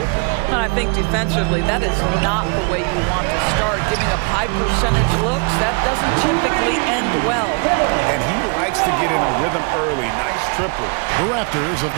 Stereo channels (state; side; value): quieter; left; 35.4 dB